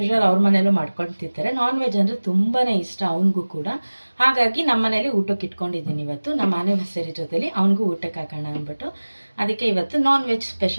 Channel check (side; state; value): both; inverted; correlation -1.00